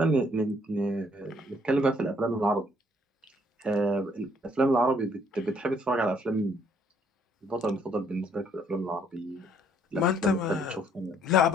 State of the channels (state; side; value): normal; both; correlation 0.65